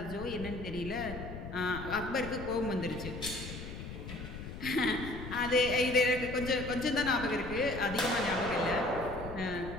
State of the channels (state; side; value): noise; left; rumble, 9 dB below the sound